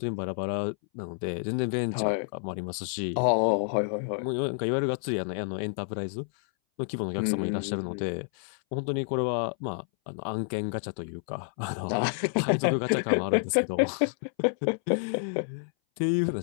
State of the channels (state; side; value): silent; right; 59 dB below the other